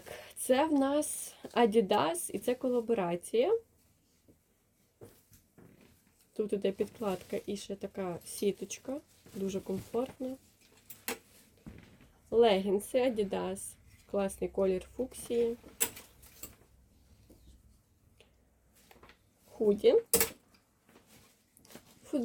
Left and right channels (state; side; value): identical; both; correlation 1.00